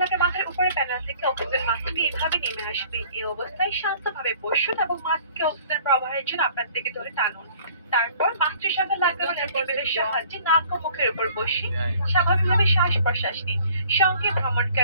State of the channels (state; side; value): inverted; both; correlation -0.54